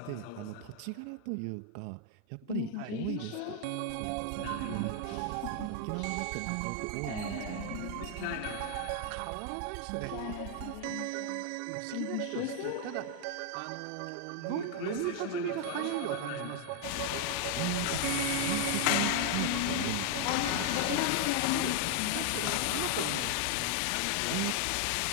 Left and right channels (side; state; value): both; different; correlation 0.00